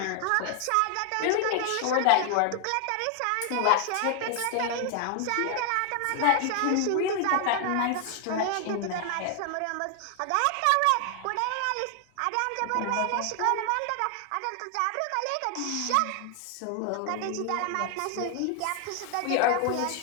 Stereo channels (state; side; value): different; both; correlation 0.00